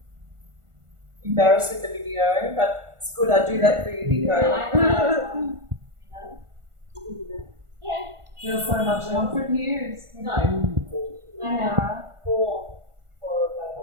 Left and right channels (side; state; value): left; late; 1.4 ms